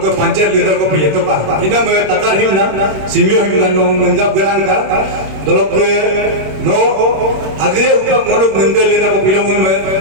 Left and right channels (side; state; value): left; late; 26 ms